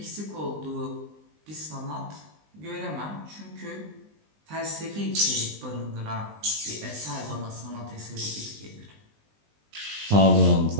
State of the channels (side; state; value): left; late; 20 ms